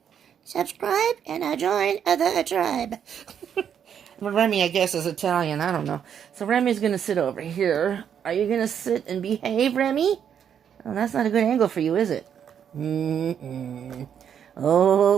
Subscribe and join the tribe. Well, Remy, I guess, is Italian. I don't know. So Remy's going to sit over here. Are you going to sit and behave, Remy? Oh, that's not a good angle for you, is it?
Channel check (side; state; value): left; quieter; 8.4 dB